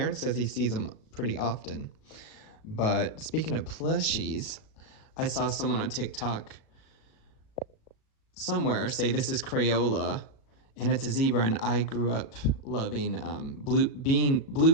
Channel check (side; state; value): right; late; 36 ms